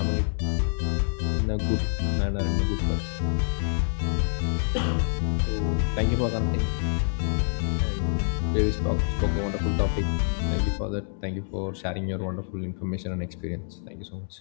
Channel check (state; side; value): silent; right; digital silence